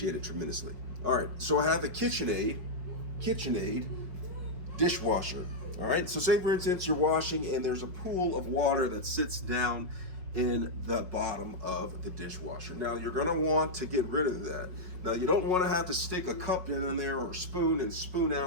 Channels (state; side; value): late; left; 5.4 ms